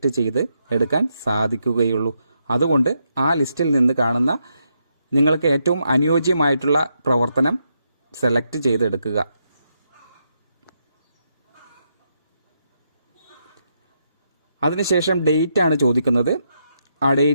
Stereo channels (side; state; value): both; inverted; correlation -0.81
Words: ചെയ്ത് എടുക്കാൻ സാധിക്കുകയുള്ളൂ. അതുകൊണ്ട് ആ ലിസ്റ്റിൽ നിന്ന് കാണുന്ന നിങ്ങൾക്ക് ഏറ്റവും അനുയോജ്യമായിട്ടുള്ള പ്രവർത്തനം സെലക്ട് ചെയ്തെടുക്കുക. അതിനുശേഷം ഡേറ്റ് ആണ് ചോദിക്കുന്നത്. ആ